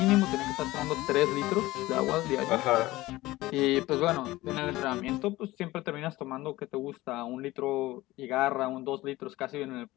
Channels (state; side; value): quieter; right; 18.2 dB